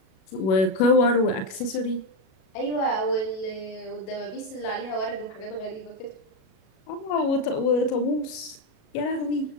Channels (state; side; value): late; right; 37 ms